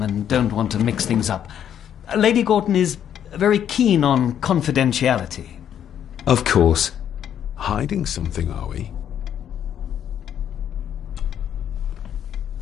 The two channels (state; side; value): quieter; right; 9.6 dB